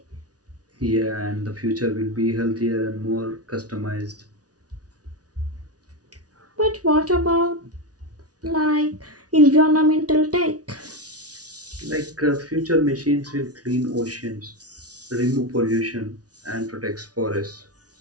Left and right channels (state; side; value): late; left; 0.68 ms